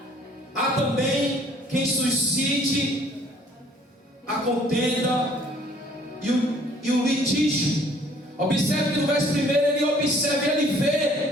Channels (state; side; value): normal; both; correlation 0.58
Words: Há também quem suscite a contenda e o litígio. Observe que no verso 1 ele observa e ele vê